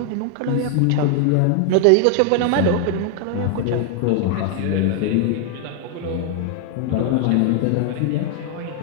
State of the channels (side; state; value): both; different; correlation 0.00